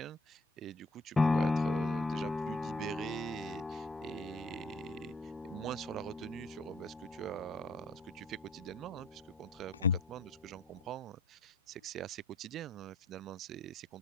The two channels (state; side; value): normal; both; correlation 0.61